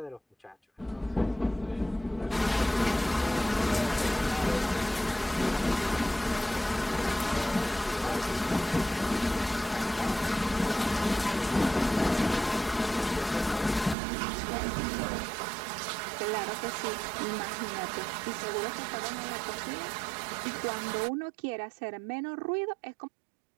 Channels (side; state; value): left; drops out; at 14.0 s